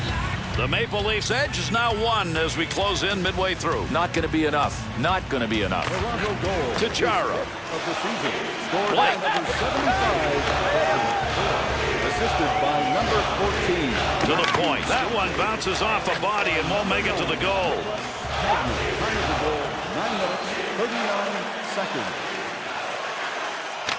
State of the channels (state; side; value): identical; both; correlation 1.00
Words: The Maple Leafs edge is now 1 as we close in midway through. Not going to be enough. Not going to be enough. Toronto goal. To Chara. Of the season. Scored by number 75. Assisted by number 14. To the point. That one bounces off a body and won't make it to the goal. Time of the goal, 9 minutes, 39 seconds.